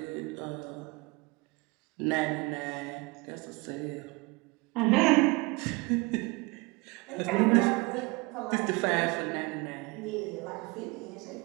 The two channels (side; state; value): left; quieter; 25.6 dB